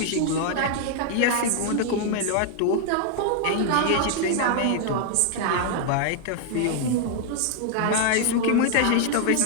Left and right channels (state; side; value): different; both; correlation 0.00